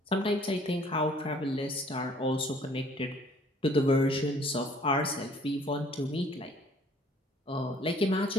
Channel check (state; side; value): normal; both; correlation 0.57